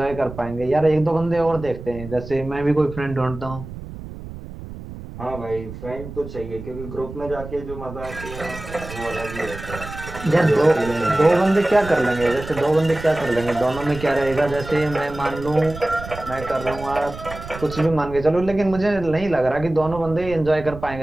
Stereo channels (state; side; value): noise; right; rumble, 12 dB below the sound